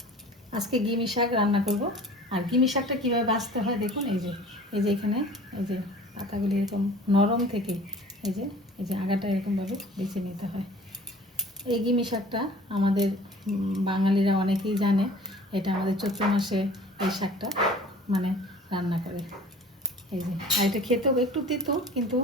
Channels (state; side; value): normal; both; correlation 0.46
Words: আজকে গিমি শাক রান্না করব। আর গিমি শাকটা কীভাবে বাছতে হয় দেখুন। এই যে এখানে এই যে পাতাগুলি এরকম নরম থেকে এই যে আগাটা এরকমভাবে বেছে নিতে হয়। এই গিমি শাকটা আমাদের বাঙালিরা অনেকেই জানে। এটা আমাদের চৈত্র মাসে এই শাকটা মানে রান্না করে। এই যে আর এটা খেতেও একটু তিতো, কিন্তু